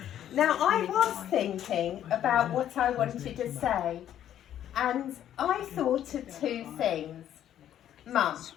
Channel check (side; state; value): right; quieter; 10.9 dB